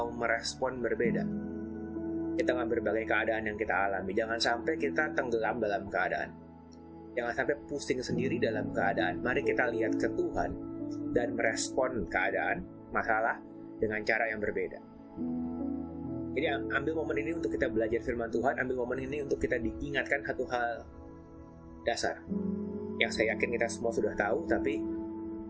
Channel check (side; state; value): both; identical; correlation 1.00